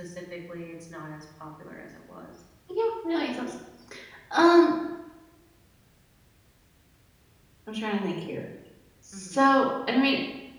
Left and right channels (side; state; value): both; identical; correlation 1.00